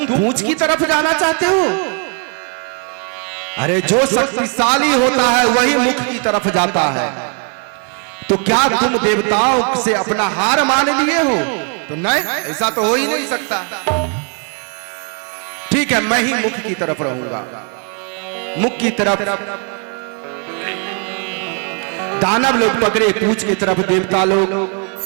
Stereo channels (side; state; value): left; quieter; 38.9 dB